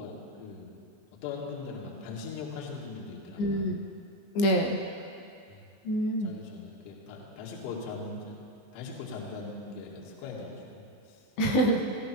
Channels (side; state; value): right; late; 19 ms